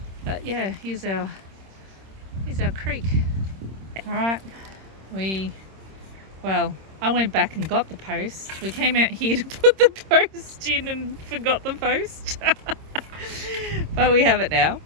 But yeah, here's our creek. All right, I went back and got the post. We came out here to put the post in and forgot the post. But we have it now.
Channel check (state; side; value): late; left; 26 ms